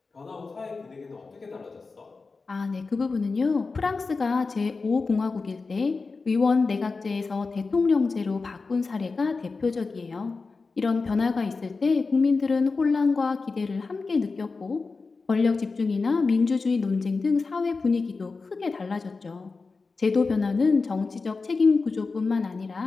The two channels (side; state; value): right; quieter; 4.2 dB